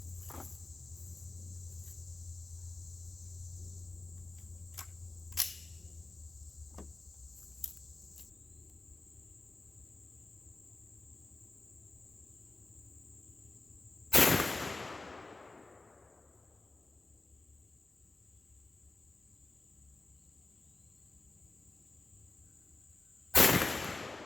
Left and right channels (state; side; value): quieter; right; 3.2 dB